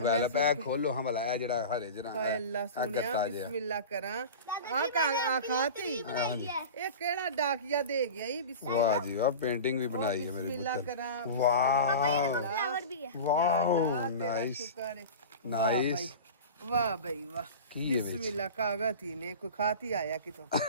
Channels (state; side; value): inverted; both; correlation -0.32